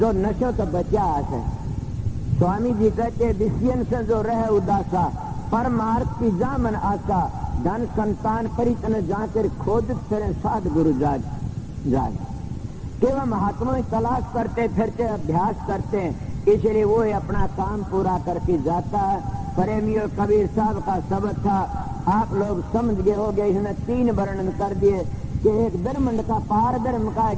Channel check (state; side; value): identical; both; correlation 1.00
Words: नशों से बचा है। स्वामी जी कहते विषयन से जो रहे उदासा, परमार्थ की जामन आशा, धन संतान परितन जाकर खोज फिर साध गुरु जाज केवल महात्मा तलाश करते फिरते अभ्यास करते हैं, इसलिए वो अपना काम पूरा करके जाता है। प्रेमी और कबीर साहब का शब्द था, आप लोग समझ गए हो गए। इसने 3 वर्णन कर दिए कि एक ब्रह्मंड का, पार ब्रह्म का,